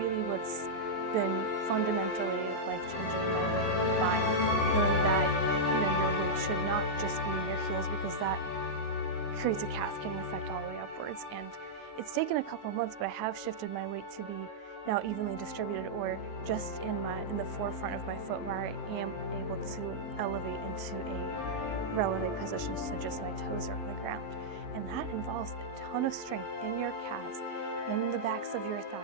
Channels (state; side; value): late; right; 19 ms